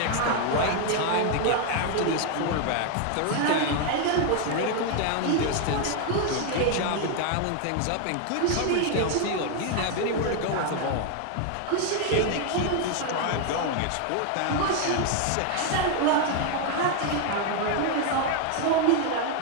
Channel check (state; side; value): different; both; correlation 0.01